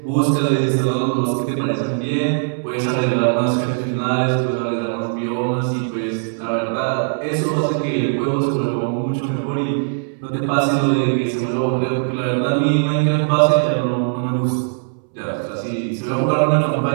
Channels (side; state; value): left; silent; 64 dB below the other